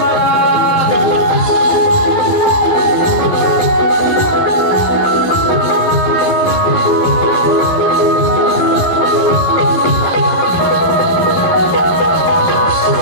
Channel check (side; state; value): right; late; 12 ms